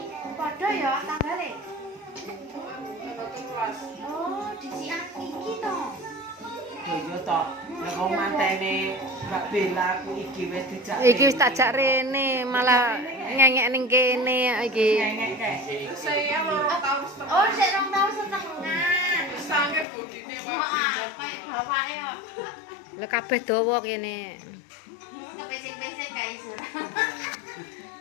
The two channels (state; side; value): drops out; right; at 19.9 s